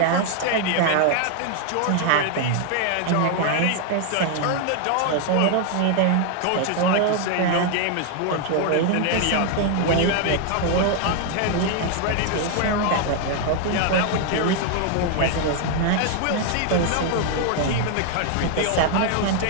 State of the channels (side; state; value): both; different; correlation 0.00